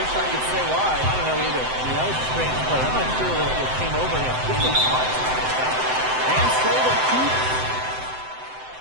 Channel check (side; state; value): left; late; 7.8 ms